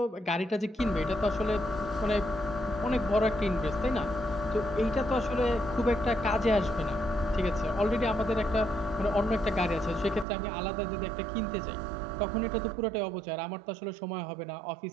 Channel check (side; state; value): left; drops out; at 10.2 s